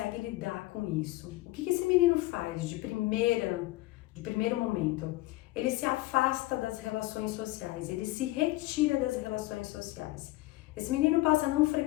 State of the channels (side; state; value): right; quieter; 18.9 dB